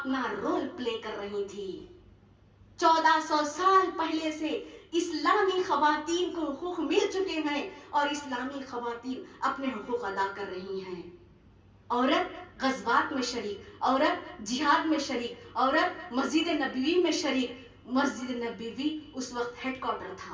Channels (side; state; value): both; identical; correlation 1.00